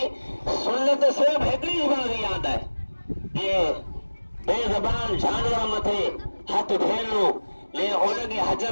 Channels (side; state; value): both; inverted; correlation -1.00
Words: سنت صرف ہکڑی بات یاد ہے یہ بے زبان جانور متھے ہاتھ پھیرنو لے ان کے حج